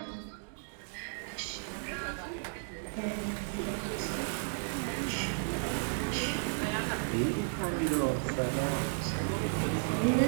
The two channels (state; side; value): silent; left; digital silence